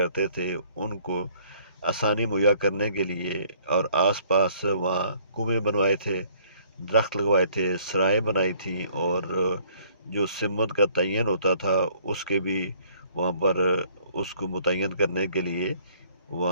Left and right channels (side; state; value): both; inverted; correlation -0.60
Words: تھے ان کو آسانی مہیا کرنے کے لیے، اور آس پاس وہاں کنویں بنوائے تھے، درخت لگوائے تھے، سرائیں بنائی تھیں، اور جو سمت کا تعین ہوتا تھا اس کے بھی وہاں پر اس کو متعین کرنے کے لیے